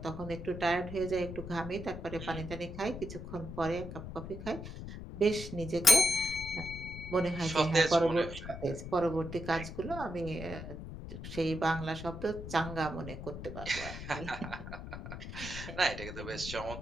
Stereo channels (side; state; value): left; noise; rumble, 9 dB below the sound